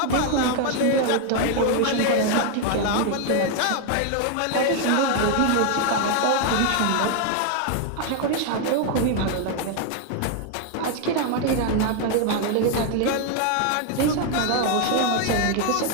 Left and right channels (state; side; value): different; both; correlation 0.00